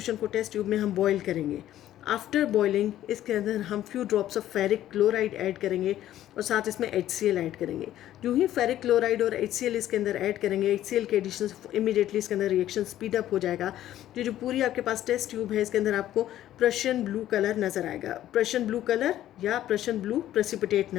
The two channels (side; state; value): right; quieter; 12.8 dB